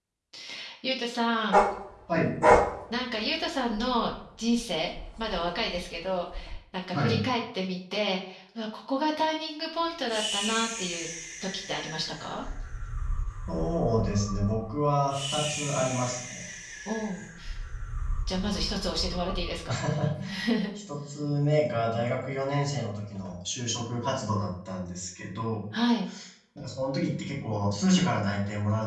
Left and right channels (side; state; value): both; identical; correlation 1.00